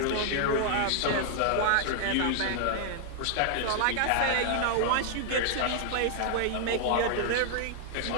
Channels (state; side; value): different; both; correlation -0.01